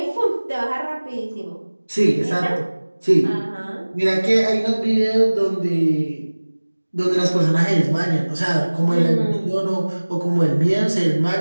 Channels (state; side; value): inverted; both; correlation -1.00